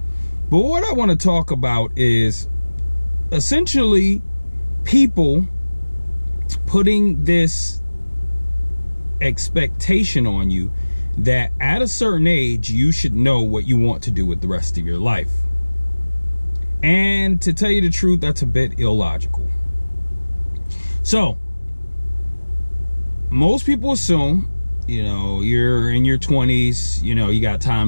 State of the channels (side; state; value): both; inverted; correlation -1.00